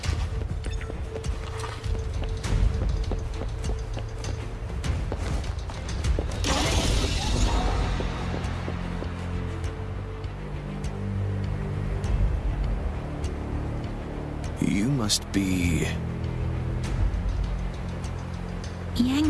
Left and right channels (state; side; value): identical; both; correlation 1.00